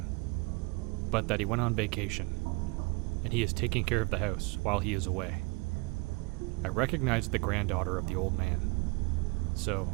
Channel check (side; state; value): left; quieter; 27.5 dB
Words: but that he went on vacation, and he is taking care of the house while he is away. I recognized the granddaughter of the old man, so